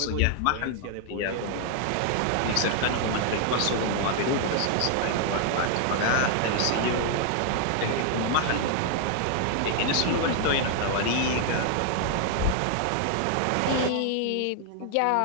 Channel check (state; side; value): different; both; correlation 0.00